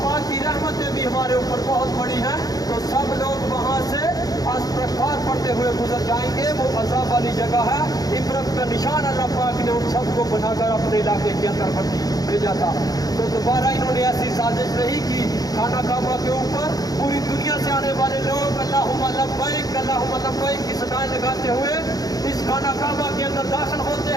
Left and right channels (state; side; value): late; right; 0.18 ms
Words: पाक की रहमतें भी हमारे ऊपर बहुत बड़ी हैं। तो सब लोग वहाँ से इस्तग़फ़ार पढ़ते हुए गुजर जाएंगे। वो अज़ाब वाली जगह है। इबरत का निशान अल्लाह पाक ने उन सबको बनाकर अपने इलाके के अंदर भेजा था। तो दोबारा इन्होंने ऐसी साजिश नहीं की। खाना काबा के ऊपर पूरी दुनिया से आने वाले लोग अल्लाहुम्मा लब्बैक अल्लाहुम्मा लब्बैक की सदाएं लगाते हुए इस खाना काबा के अंदर दाखिल